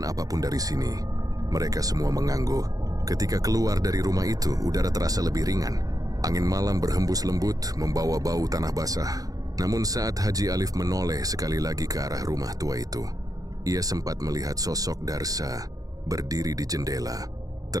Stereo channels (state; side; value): late; left; 0.18 ms